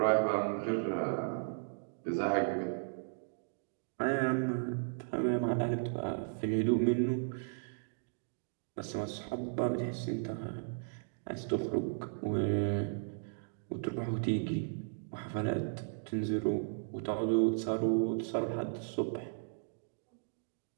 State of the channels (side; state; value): left; silent; digital silence